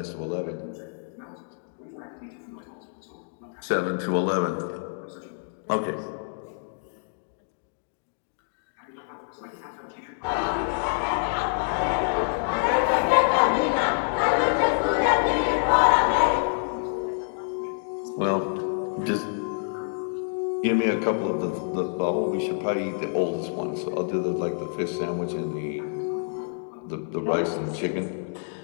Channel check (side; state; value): right; silent; digital silence